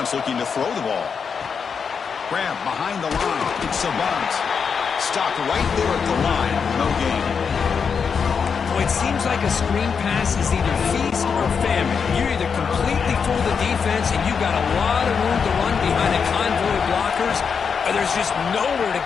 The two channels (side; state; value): right; quieter; 6.2 dB